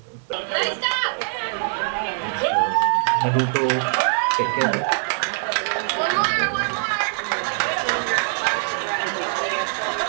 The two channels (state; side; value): silent; left; 64 dB below the other